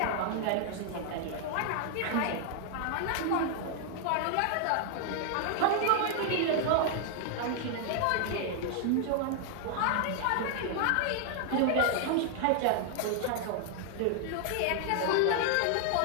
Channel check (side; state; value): both; different; correlation 0.00